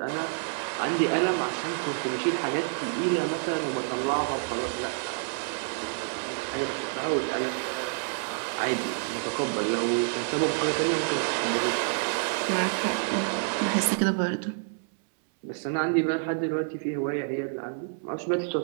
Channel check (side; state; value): left; silent; 59 dB below the other